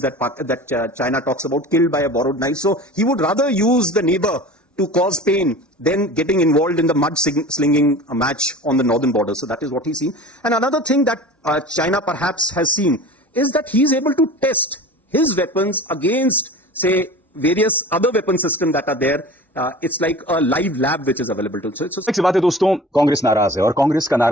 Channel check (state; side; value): normal; both; correlation 0.38